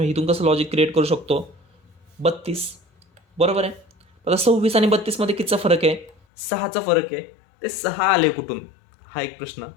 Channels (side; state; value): right; drops out; at 6.2 s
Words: इथून कसं लॉजिक क्रिएट करू शकतो, 32, बरोबर आहे. आता 26 आणि 32मध्ये कितीचा फरक आहे, 6चा फरक आहे. ते 6 आले कुठून, हा एक प्रश्न,